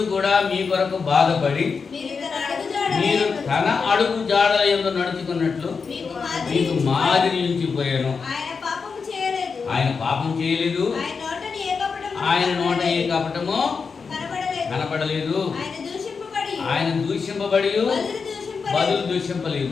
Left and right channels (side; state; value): right; quieter; 5.3 dB